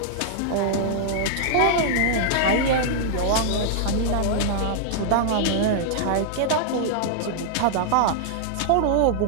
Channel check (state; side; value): different; both; correlation -0.01